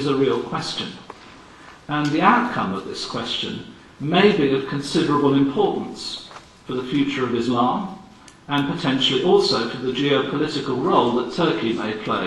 a real question. And the outcome of this question may be of considerable importance for the future of Islam, and potentially also for the geopolitical role that Turkey may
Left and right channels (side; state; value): both; identical; correlation 1.00